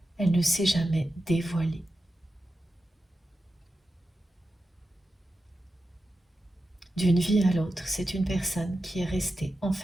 Elle ne s'est jamais dévoilée. D'une vie à l'autre, c'est une personne qui est restée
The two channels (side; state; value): both; normal; correlation 0.91